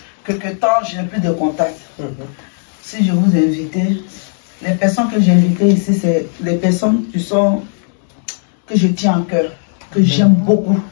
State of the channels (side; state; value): right; silent; 68 dB below the other